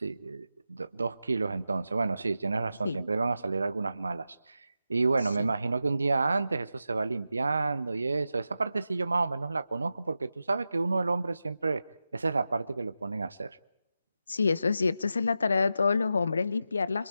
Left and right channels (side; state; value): both; inverted; correlation -0.90